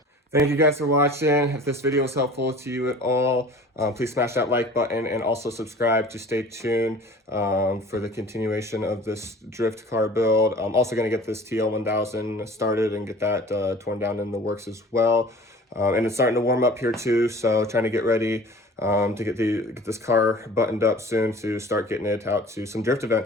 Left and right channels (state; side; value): normal; both; correlation 0.44